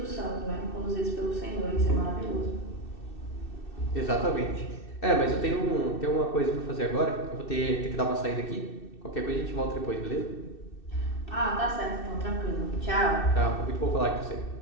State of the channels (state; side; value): late; right; 2.6 ms